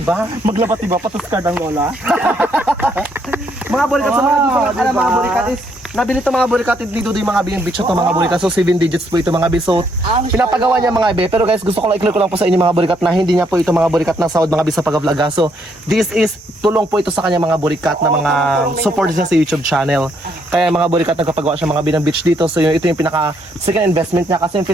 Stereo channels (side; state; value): both; normal; correlation 0.72